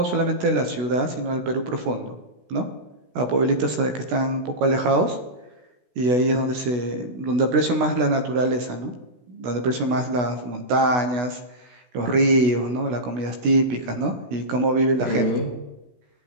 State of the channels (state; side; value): late; left; 16 ms